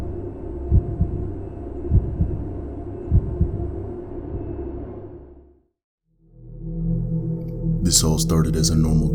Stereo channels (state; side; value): identical; both; correlation 1.00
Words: This all started as a normal